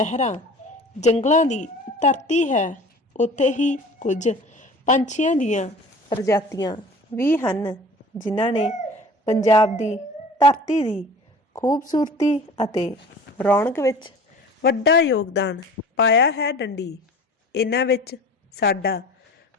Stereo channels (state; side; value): normal; both; correlation 0.43